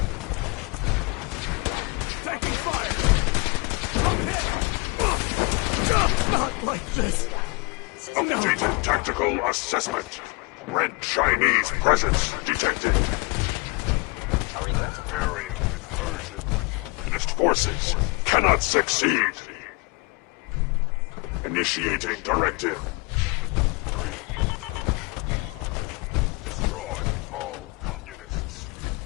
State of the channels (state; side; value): quieter; right; 29.4 dB